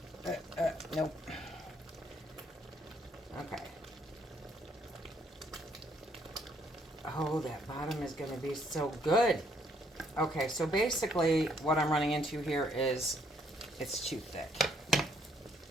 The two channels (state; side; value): normal; both; correlation 0.68